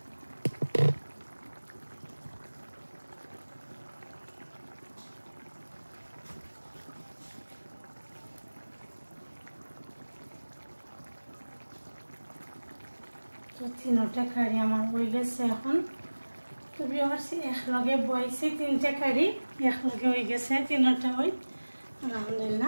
তো 3টা কারি আমার হয়ে গেছে এখন। তো ভিউয়ার্স, একলগে বইছে 3টা কারি একলগে হয়ে গেছে, 3টা হই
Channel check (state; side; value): inverted; both; correlation -1.00